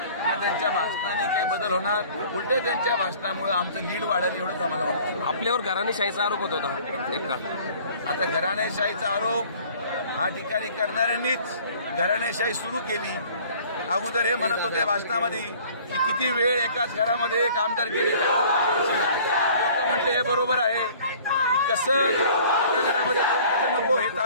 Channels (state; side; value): inverted; both; correlation -0.51